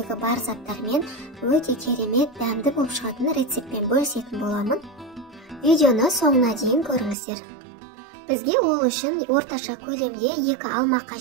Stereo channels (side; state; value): left; drops out; at 7.2 s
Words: бар заттармен өте керемет, дәмді болып шығатын рецептпен бөлісетін боламын. Видеоны соңына дейін көріңіздер. Бізге ол үшін орташа көлемде 2 алма